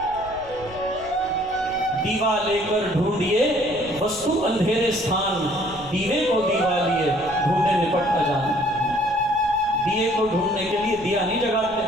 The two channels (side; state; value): left; noise; rumble, 19 dB below the sound